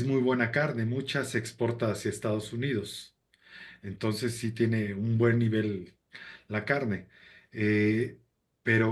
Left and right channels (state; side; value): identical; both; correlation 1.00